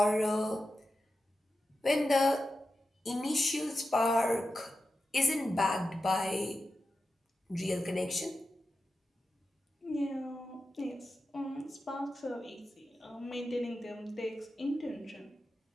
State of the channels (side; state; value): both; normal; correlation 0.91